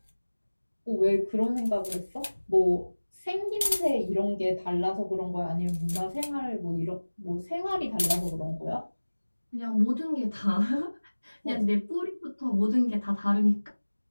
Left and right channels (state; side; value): inverted; both; correlation -1.00